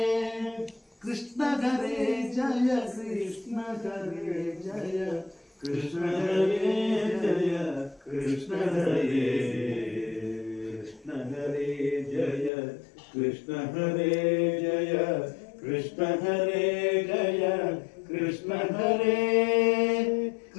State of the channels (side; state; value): right; drops out; at 12.5 s